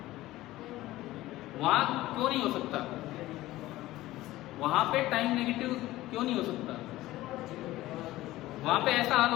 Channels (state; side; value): quieter; right; 16.7 dB